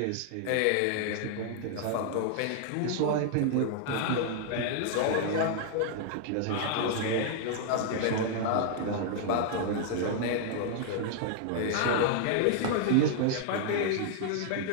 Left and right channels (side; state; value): both; different; correlation -0.01